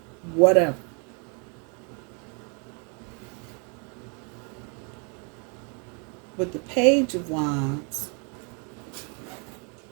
whatever. But the Page of Wands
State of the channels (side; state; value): left; quieter; 36.6 dB